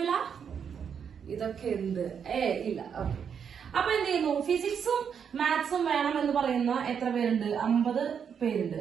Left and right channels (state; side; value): quieter; left; 7.3 dB